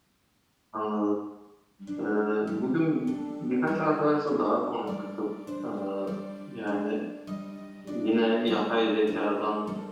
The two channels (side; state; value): both; identical; correlation 1.00